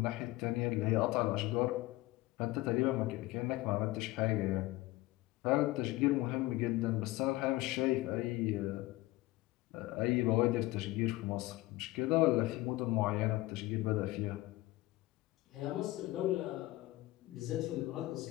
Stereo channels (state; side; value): quieter; right; 18.9 dB